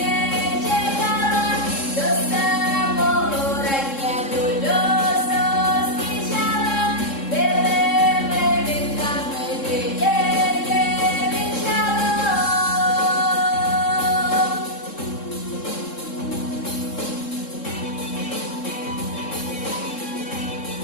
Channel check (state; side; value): late; right; 3.7 ms